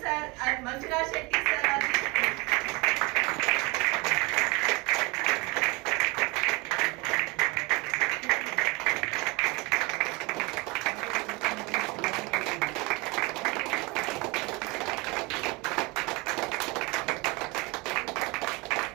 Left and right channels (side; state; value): left; quieter; 26.2 dB